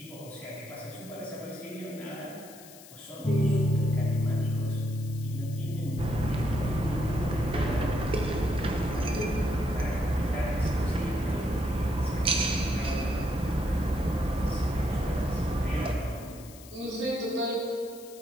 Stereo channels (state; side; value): noise; left; hiss, 19 dB below the sound